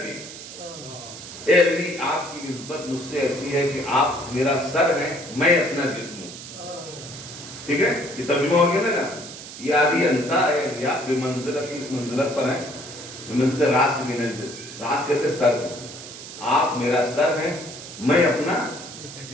اے علی آپ کی نسبت مجھ سے ایسی ہے کہ آپ میرا سر ہیں، میں اپنا جسم ہوں. ٹھیک ہے، یہ ترجمہ ہو گیا نا. یہ علی انتا ہے یا بمنزلۃ، اس منزلت پر ہیں، بمنزلۃ الراس من الجسد. راس کہتے سر، آپ میرا سر ہیں، میں اپنا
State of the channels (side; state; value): right; noise; hiss, 13 dB below the sound